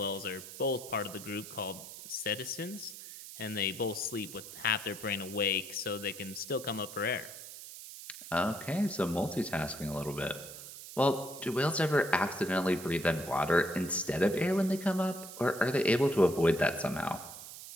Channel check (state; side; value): noise; right; hiss, 13 dB below the sound